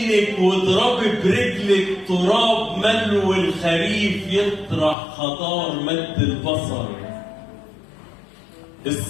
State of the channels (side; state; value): right; drops out; at 5.0 s